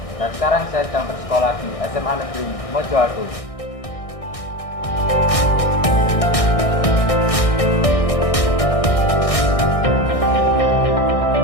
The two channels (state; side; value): late; right; 1.6 ms